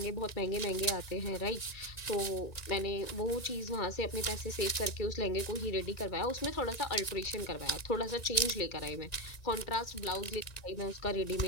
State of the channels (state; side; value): late; right; 2.1 ms